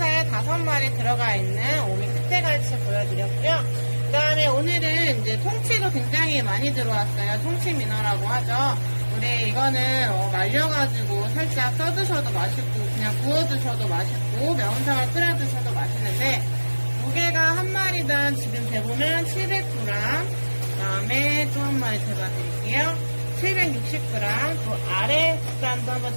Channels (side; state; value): both; inverted; correlation -1.00